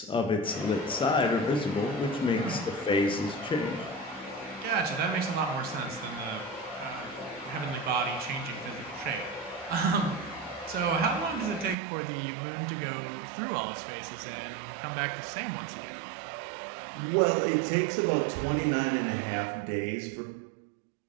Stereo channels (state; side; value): drops out; left; at 11.8 s